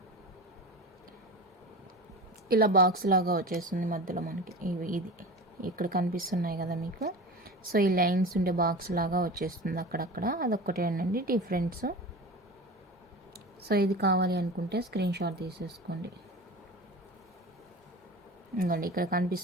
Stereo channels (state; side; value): normal; both; correlation 0.32